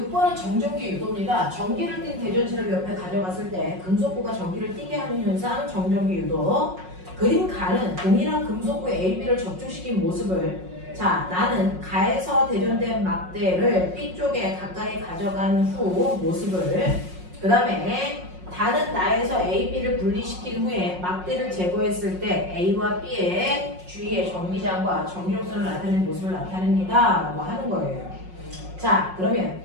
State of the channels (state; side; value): late; left; 5.5 ms